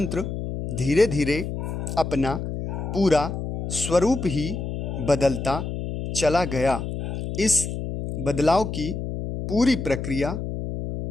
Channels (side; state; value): left; noise; hum, 5 dB below the sound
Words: धीरे धीरे अपना पूरा स्वरूप ही बदलता चला गया। इस बदलाव की पूरी प्रक्रिया